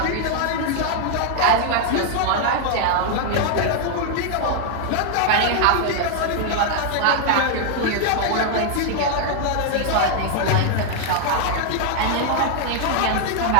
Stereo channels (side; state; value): both; different; correlation 0.00